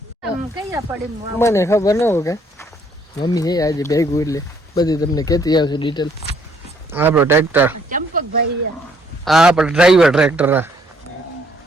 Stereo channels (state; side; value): normal; both; correlation 0.66